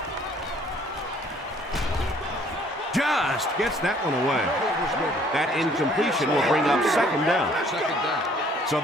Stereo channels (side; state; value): both; normal; correlation 0.59